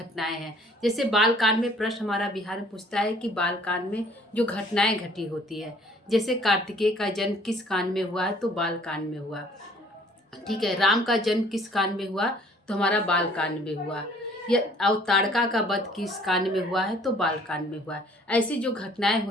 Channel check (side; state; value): both; normal; correlation 0.57